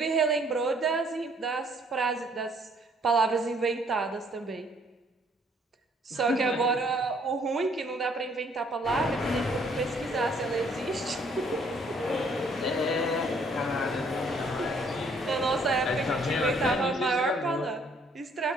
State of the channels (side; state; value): both; normal; correlation 0.64